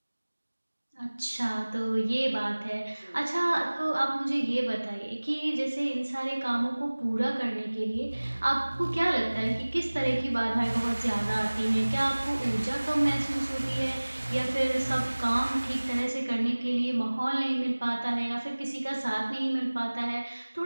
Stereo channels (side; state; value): both; inverted; correlation -1.00